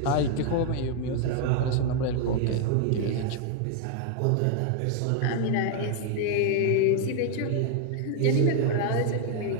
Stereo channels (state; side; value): different; both; correlation 0.00